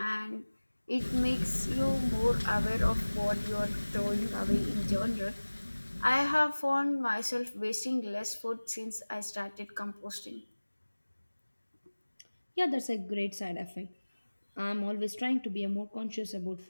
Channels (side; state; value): both; inverted; correlation -1.00